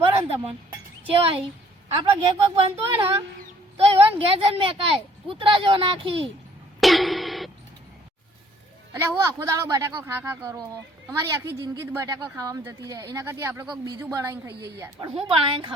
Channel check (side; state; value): both; normal; correlation 0.60